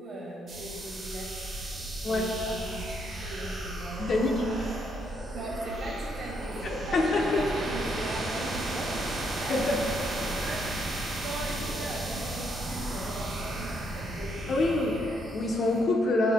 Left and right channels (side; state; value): both; normal; correlation 0.74